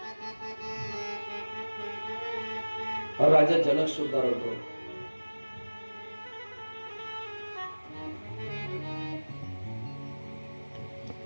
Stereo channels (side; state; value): both; inverted; correlation -1.00